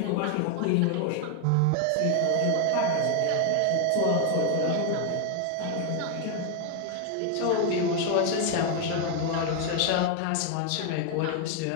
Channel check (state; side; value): different; both; correlation 0.01